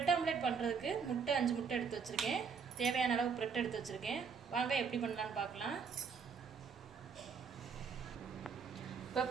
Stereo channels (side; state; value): left; quieter; 6.0 dB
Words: ஆம்லெட் பண்ணுறதுக்கு 5 முட்டை எடுத்து வச்சுருக்கேன். தேவையான அளவு பிரெட் எடுத்து வச்சுருக்கேன். வாங்க எப்படி பண்ணலான்னு பார்க்கலாம். இப்போ